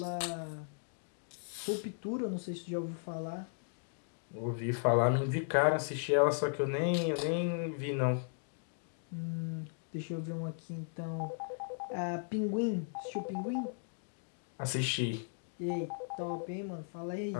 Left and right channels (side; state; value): right; silent; digital silence